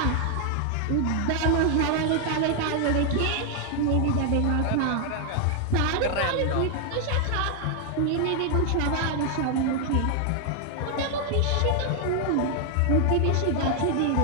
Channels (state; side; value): different; both; correlation 0.00